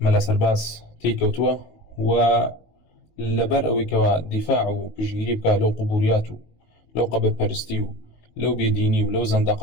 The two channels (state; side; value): late; right; 19 ms